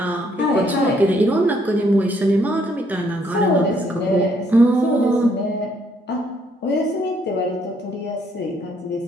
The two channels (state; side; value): normal; both; correlation 0.69